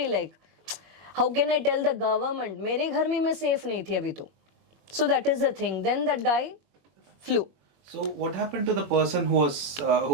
like how can I tell the government? मेरे घर में मैं safe नहीं थी अभी तो. So that is the thing. Then that guy flew. So what happened to the person who was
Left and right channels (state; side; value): late; left; 21 ms